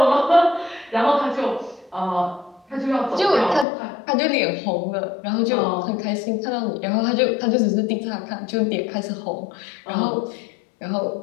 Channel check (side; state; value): right; drops out; at 3.7 s